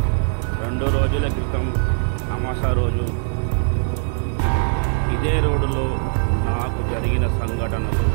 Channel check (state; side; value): silent; left; digital silence